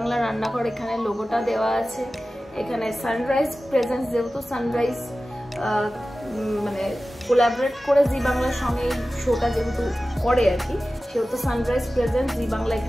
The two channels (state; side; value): normal; both; correlation 0.95